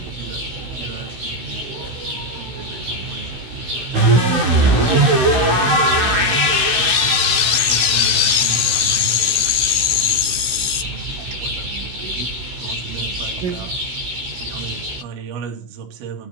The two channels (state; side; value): late; left; 16 ms